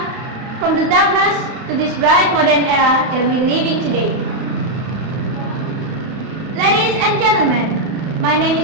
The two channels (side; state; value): left; late; 32 ms